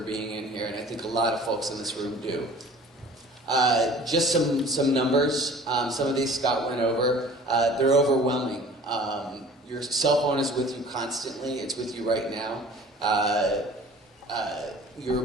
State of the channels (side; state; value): both; normal; correlation 0.47